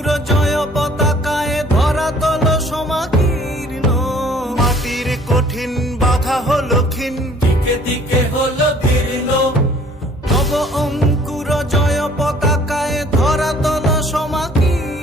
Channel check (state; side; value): normal; both; correlation 0.55